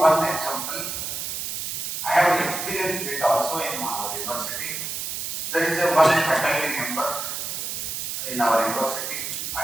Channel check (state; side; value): noise; right; hiss, 4 dB below the sound